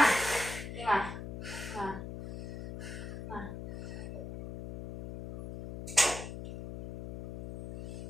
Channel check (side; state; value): left; noise; hum, 8 dB below the sound